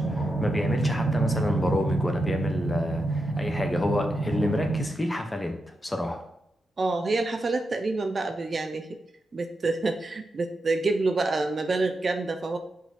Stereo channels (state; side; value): normal; both; correlation 0.87